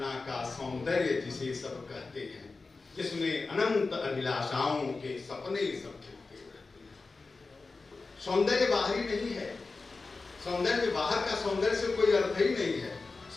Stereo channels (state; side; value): quieter; right; 3.9 dB